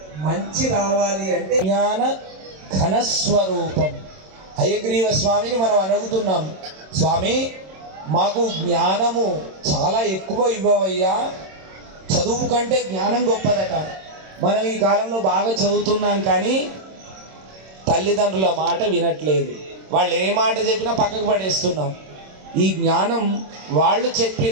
మంచి రావాలి అంటే జ్ఞాన ఘనస్వరూపం. హయగ్రీవ స్వామిని మనం అడుగుతున్నాం, స్వామి మాకు జ్ఞానము చాలా ఎక్కువ ఇవ్వవయ్యా, చదువు కంటే జ్ఞానం గొప్పదట. మనం ఈ కాలంలో బాగా చదువుతున్నాం కానీ తల్లిదండ్రుల మాట వినట్లేదు. వాళ్ళు ఏ మాట చెప్పినా పక్కకు పడేస్తున్నాం. ఈ జ్ఞానం వాళ్ళు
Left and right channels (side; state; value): left; late; 26 ms